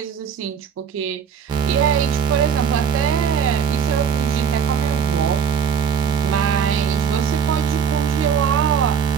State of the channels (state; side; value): quieter; left; 7.1 dB